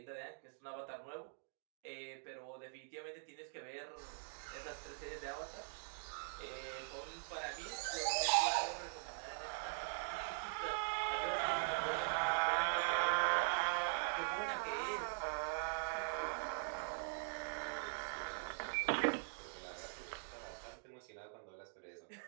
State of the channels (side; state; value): left; silent; digital silence